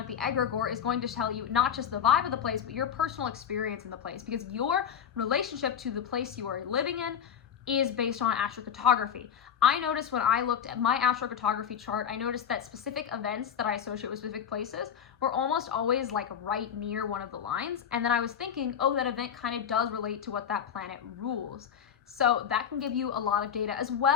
the egregore, is going to tell you not just the vibe of the place, but your personal experience in the place, because your relationship to the place you are living in is based on astrocartography. I noticed when I looked at my astrocartography chart, I noticed that specific events that I associate with specific places were almost always like right near one of the lines. And then I was thinking, oh, that event kind of does relate to what that planet rules. So that can give you a lot of data. As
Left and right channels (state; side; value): quieter; right; 8.3 dB